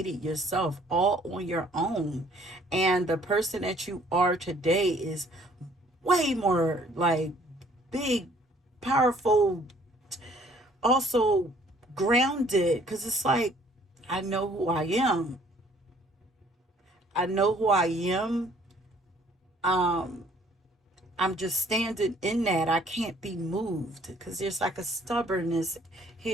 yourself all on your own, and the person that you are today is way more like big, powerful, also grounded, because it's like I know who I am. I know who I am. um I'm just standing in that. I can't be moved because there's like a stubbornness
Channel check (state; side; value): normal; both; correlation 0.59